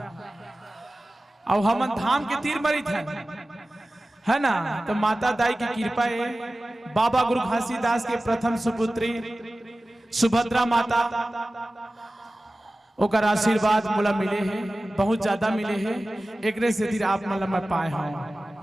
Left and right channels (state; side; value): normal; both; correlation 0.96